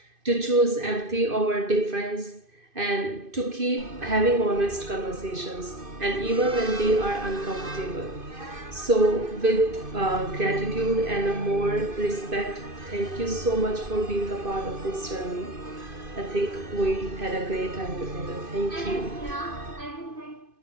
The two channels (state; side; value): late; left; 2.5 ms